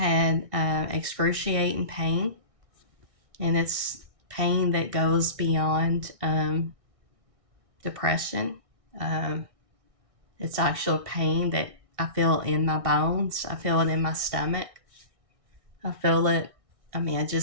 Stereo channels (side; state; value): left; late; 1.6 ms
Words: excruciating pain, and it's pain that goes beyond depression. Um, it's actual pain that I feel in my bones. I feel it in my stomach. I feel it, I